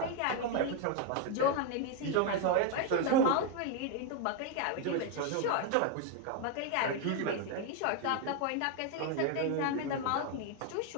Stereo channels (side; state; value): both; different; correlation 0.01